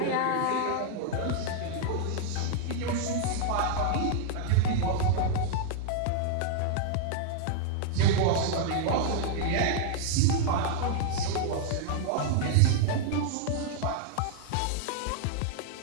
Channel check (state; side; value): different; both; correlation -0.01